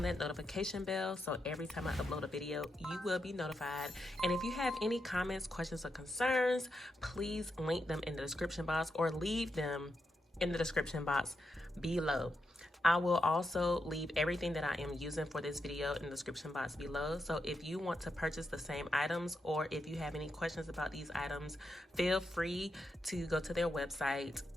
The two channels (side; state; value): both; normal; correlation 0.85